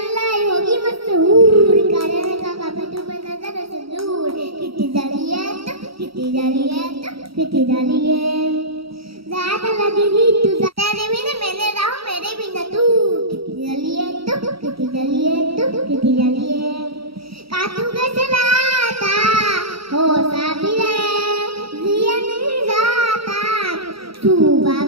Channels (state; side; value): late; left; 0.75 ms